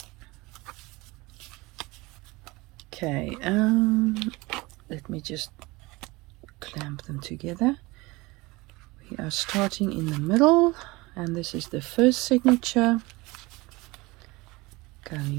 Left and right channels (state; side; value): quieter; left; 22.7 dB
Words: Okay, let me just clamp them together. We are starting in the middle, and this is the first signature